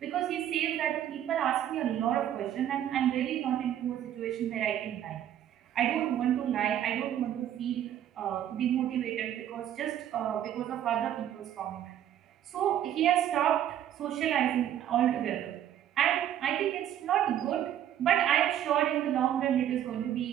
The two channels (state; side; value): quieter; left; 10.9 dB